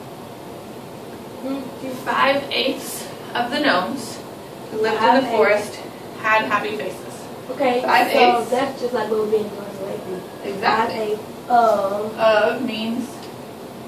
5/8 of the gnomes who lived in the forest had happy faces. Okay, 5/8. so that's just like what we're being translated. Exactly. 5/8 Of means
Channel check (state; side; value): identical; both; correlation 1.00